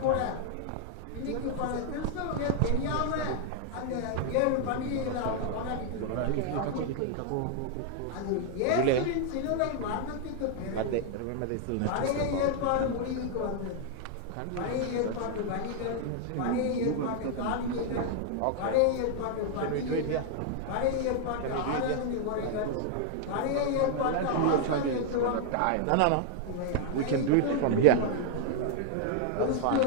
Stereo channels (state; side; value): different; both; correlation 0.00